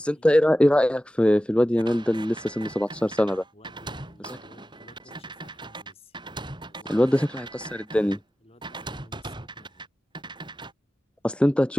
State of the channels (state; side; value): normal; both; correlation 0.95